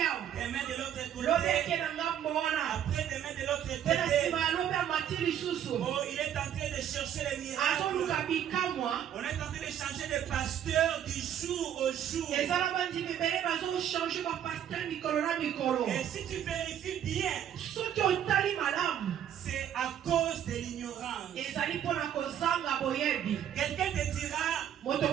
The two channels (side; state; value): left; quieter; 9.9 dB